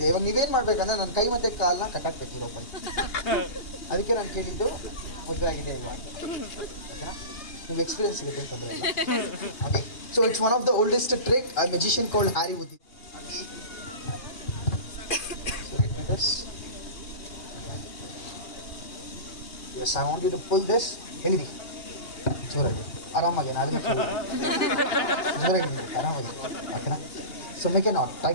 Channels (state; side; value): late; right; 2.8 ms